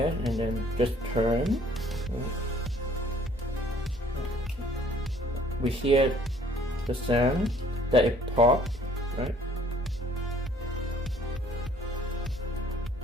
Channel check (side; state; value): both; normal; correlation 0.58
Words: and then just turn. We hear the sound that it popped, right?